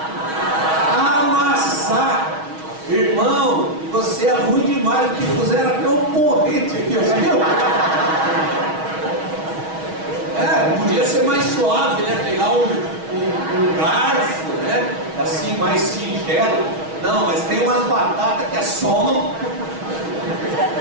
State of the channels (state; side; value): late; left; 6.3 ms